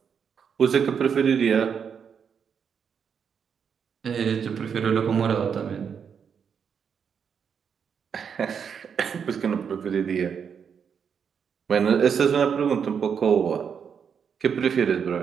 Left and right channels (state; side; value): quieter; left; 7.1 dB